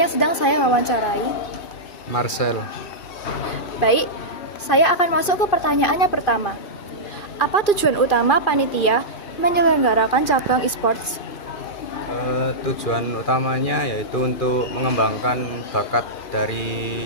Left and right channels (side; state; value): right; late; 2.4 ms